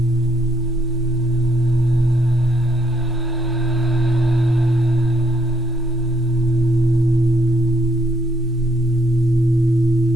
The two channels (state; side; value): normal; both; correlation 0.72